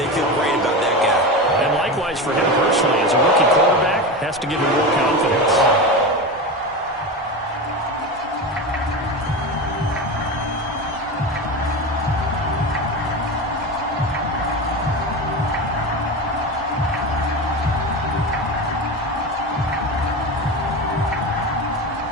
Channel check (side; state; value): both; normal; correlation 0.23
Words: feel great about that guy. And likewise for him personally, as a rookie quarterback, has to give him more confidence.